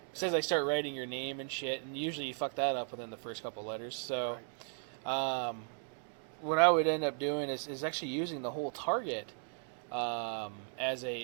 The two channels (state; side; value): silent; left; 54 dB below the other